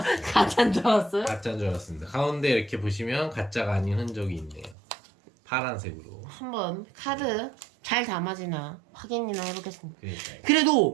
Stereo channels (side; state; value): left; drops out; at 4.8 s